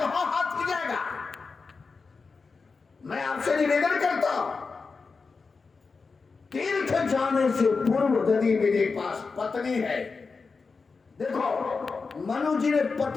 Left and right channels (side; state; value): right; quieter; 4.6 dB